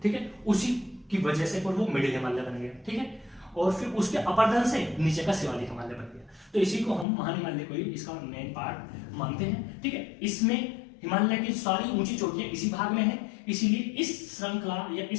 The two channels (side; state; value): right; drops out; at 7.1 s